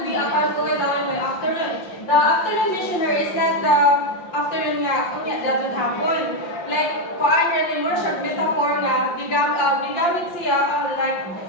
be upon going down by afternoon. The afternoon missionary is not the afternoon nga that would happen. Like kuan ni mo siya metaphor nga gigamit siya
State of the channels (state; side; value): late; right; 5.7 ms